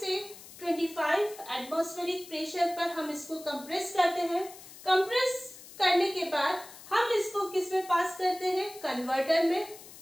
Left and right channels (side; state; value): left; noise; hiss, 17 dB below the sound